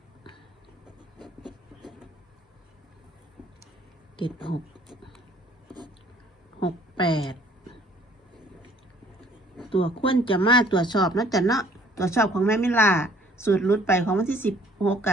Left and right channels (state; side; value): normal; both; correlation 0.58